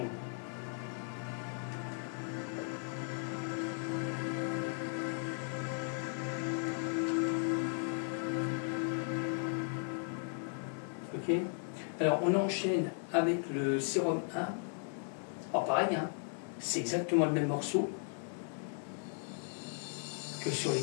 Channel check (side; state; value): right; silent; 53 dB below the other